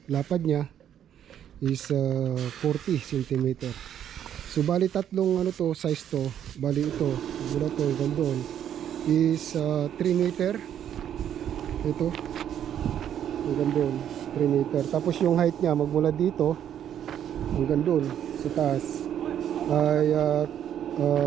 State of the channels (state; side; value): quieter; left; 9.9 dB